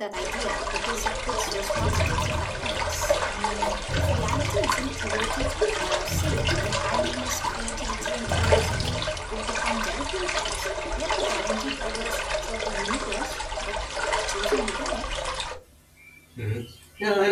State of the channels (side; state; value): both; identical; correlation 1.00